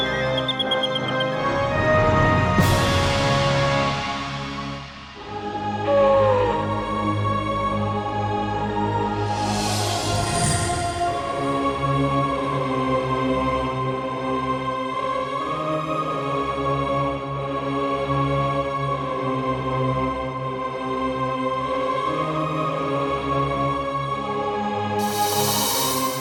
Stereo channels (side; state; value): both; identical; correlation 1.00